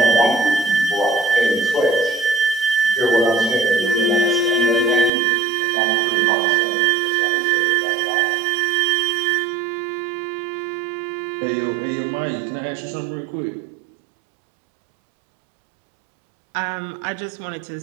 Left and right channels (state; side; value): drops out; left; at 5.1 s